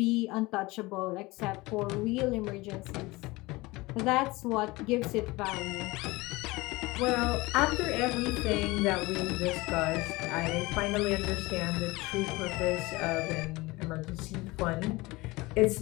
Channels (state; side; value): quieter; right; 21.8 dB